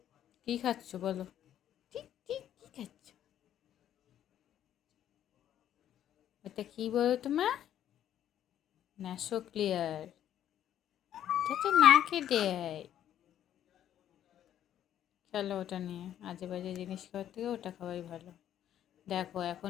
কি খাচ্ছ বলো? ঠিক ঠিক কি খাচ্ছ? এটা কি বলো তোমার? Naso clear. এটা তো নাকে দেয়। চলো ওটা নিয়ে আজে বাজে জিনিস খাওয়ার থেকে ওটা খাওয়াই ভালো। দেখো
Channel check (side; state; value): right; quieter; 10.9 dB